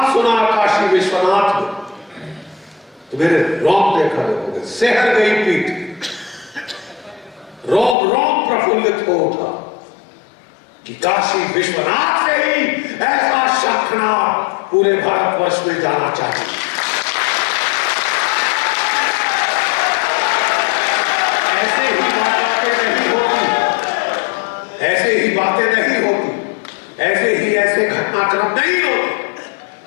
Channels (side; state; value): right; drops out; at 8.0 s